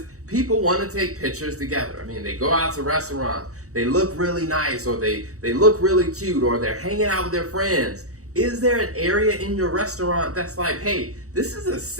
people want to take pictures together. I mean, they go out to restaurants, they look really nice, or they look really cute, or they're hanging out with their friends. Is there an area in your restaurant that's like, hey, this is a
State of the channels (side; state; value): left; late; 0.65 ms